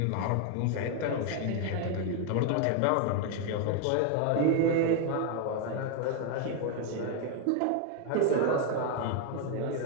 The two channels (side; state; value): both; different; correlation 0.01